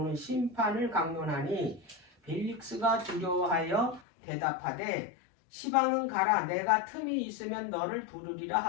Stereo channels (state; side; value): drops out; right; at 4.0 s